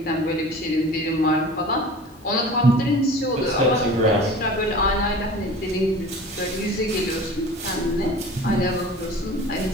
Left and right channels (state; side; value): normal; both; correlation 0.40